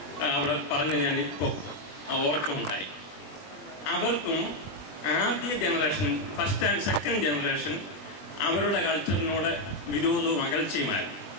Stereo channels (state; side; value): late; right; 20 ms